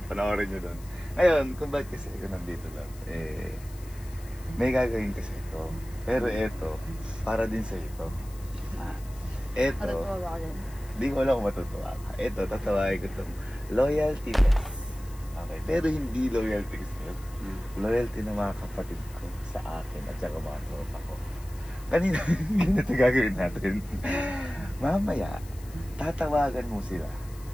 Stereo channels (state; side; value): noise; left; hiss, 22 dB below the sound